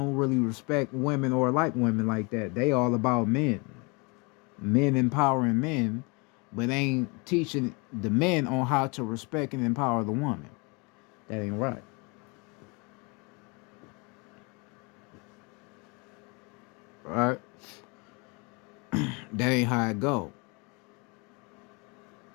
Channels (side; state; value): right; quieter; 30.0 dB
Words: really respect women or like women like that. They all about men. Men empowering men, but ain't teaching the men on how to respect and empower the woman. That ain't right. Right? That ain't how it go.